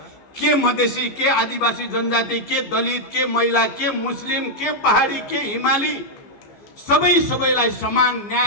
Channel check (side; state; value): right; late; 14 ms